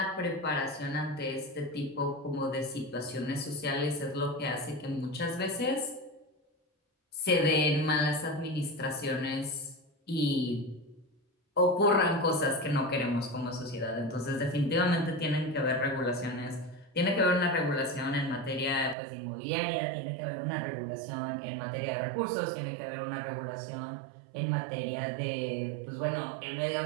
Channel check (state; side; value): drops out; left; at 18.9 s